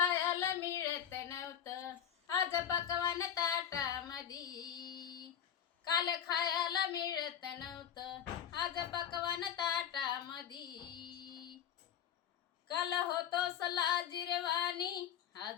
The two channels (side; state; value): right; quieter; 9.3 dB